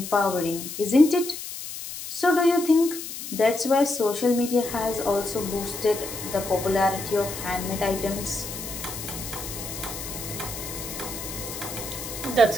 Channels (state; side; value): noise; left; hiss, 9 dB below the sound